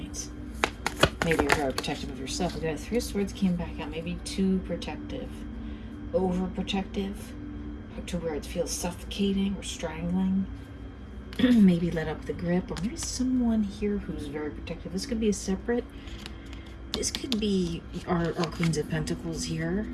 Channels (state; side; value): identical; both; correlation 1.00